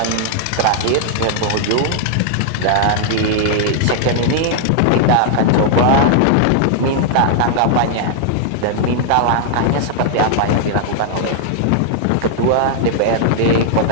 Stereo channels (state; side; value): different; both; correlation -0.01